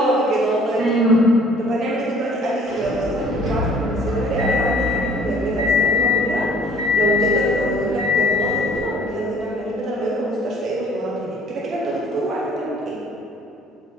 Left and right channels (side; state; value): both; normal; correlation 0.55